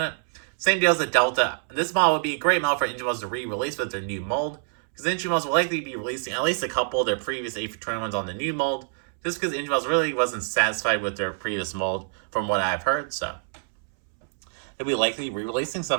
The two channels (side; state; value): left; silent; 61 dB below the other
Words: it. Same deal as the Delta. This model would be a great model for engine models to re-release with their new mold, because the engine models will likely be releasing at least a couple of their previous A321s on the new mold, just because the engine models really wasn't satisfied with their previous mold, from what I've heard, so they'll be likely re-releasing some